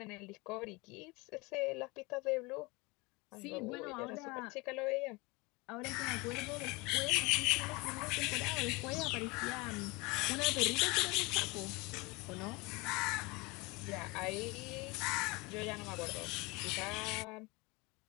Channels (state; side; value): quieter; right; 25.2 dB